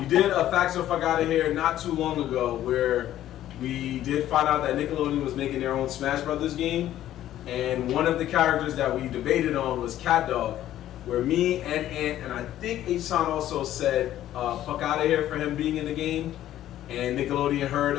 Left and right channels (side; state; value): right; quieter; 12.7 dB